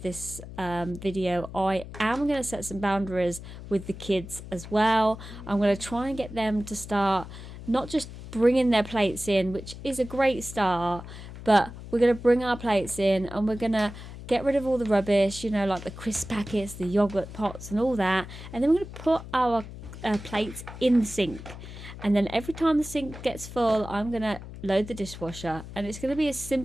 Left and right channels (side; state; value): left; noise; hum, 13 dB below the sound